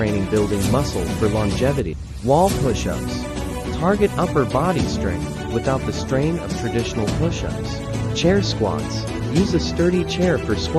Building muscle for longevity. Wall push-ups. Target upper body strength without the strain of traditional push-ups. Chair squats. Use a sturdy chair for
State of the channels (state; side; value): identical; both; correlation 1.00